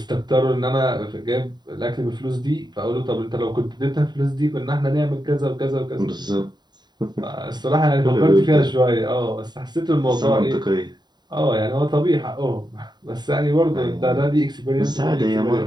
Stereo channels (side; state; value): left; late; 0.21 ms